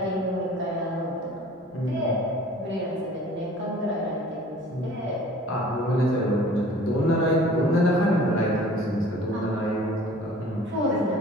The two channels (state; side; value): normal; both; correlation 0.48